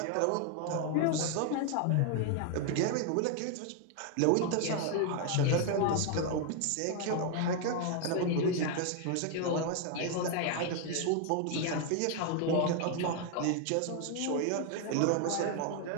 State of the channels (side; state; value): both; different; correlation 0.01